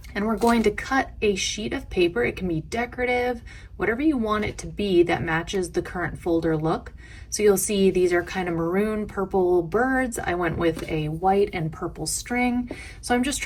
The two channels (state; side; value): identical; both; correlation 1.00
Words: and we're going to cut a sheet of paper. It can be decorative, whatever you want it to be that matches the current folder look. So you'll see these are kind of maroon purple birds. I went with a white and purple string. So I'm just